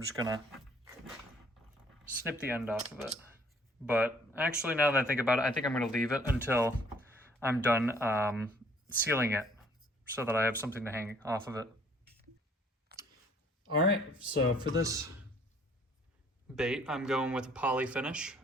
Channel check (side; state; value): both; normal; correlation 0.60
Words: just gonna snip the end off of it. But actually, now that I think about it, I think I'm gonna leave it until I'm done sealing it so that I have something to hang off of it. All right, so for this bait, I'm going with a poly finish,